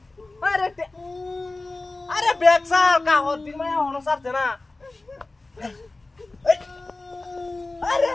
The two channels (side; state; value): right; quieter; 3.2 dB